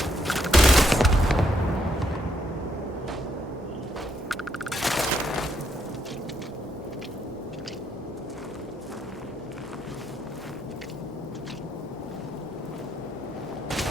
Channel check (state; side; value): normal; both; correlation 0.74